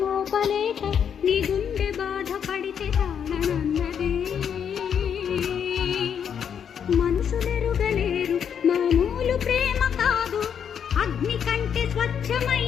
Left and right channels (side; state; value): right; quieter; 7.9 dB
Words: నీ గుండె బాధ పడితే తాళనన్నదే. మనసులెరుగలేరు మామూలు ప్రేమ కాదు, అగ్ని కంటే